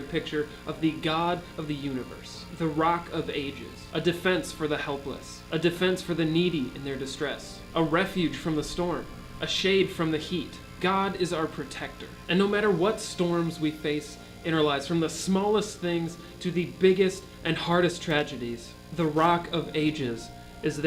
picture of the God of the universe. The Rock of Ages. A defense for the helpless. A defense for the needy in their distress. A refuge from the storm. A shade from the heat. God is our protector. And no matter what storms we face in our lives, from the smallest things to the biggest and hardest tragedies, the Rock of Ages is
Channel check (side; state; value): both; identical; correlation 1.00